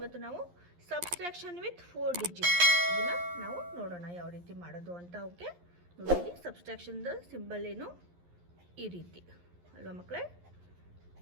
ಇವತ್ತು ನಾವು ಸಬ್ಸ್ಟ್ರಾಕ್ಷನ್ ವಿತ್ 4 ಡಿಜಿಟ್ ಇದನ್ನು ನಾವು ನೋಡೋಣ ಯಾವ ರೀತಿ ಮಾಡೋದು ಅಂತ. ಓಕೆ, ನೋಡಿ ಸಬ್ಸ್ಟ್ರಾಕ್ಷನ್ದ ಸಿಂಬಲ್ ಏನು ಈ ರೀತಿ ಅಲ್ವಾ ಮಕ್ಕಳೇ.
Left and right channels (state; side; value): late; left; 11 ms